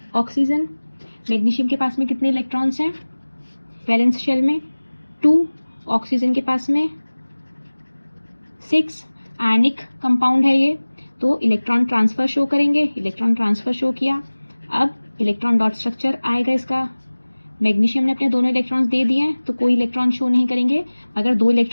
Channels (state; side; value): inverted; both; correlation -1.00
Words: ऑक्सीजन। मैग्नीशियम के पास में कितने इलेक्ट्रॉन्स हैं वैलेंस शेल में 2, ऑक्सीजन के पास में 6। आयनिक कंपाउंड है ये, तो इलेक्ट्रॉन ट्रांसफर शो करेंगे, इलेक्ट्रॉन ट्रांसफर शो किया। अब इलेक्ट्रॉन डॉट स्ट्रक्चर आएगा इसका। मैग्नीशियम ने अपने दोनों इलेक्ट्रॉन्स दे दिए हैं तो कोई इलेक्ट्रॉन शो नहीं करेंगे। अगर 2